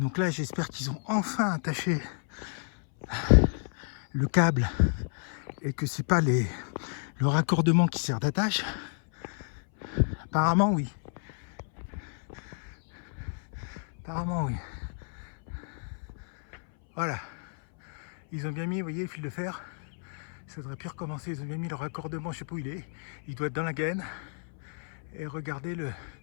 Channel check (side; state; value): right; silent; 57 dB below the other